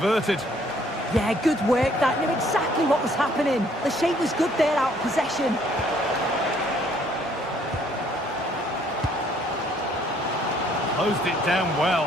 Yeah, good work. That knew exactly what was happening. The shape was good there, out of possession. Closed it down well.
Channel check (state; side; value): normal; both; correlation 0.63